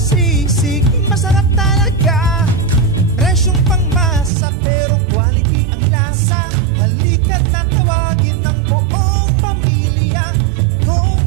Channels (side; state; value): left; drops out; at 4.3 s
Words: masarap talaga. Presyong pangmasa pero quality ang lasa. Halika't natawagin ng buong pamilya. Home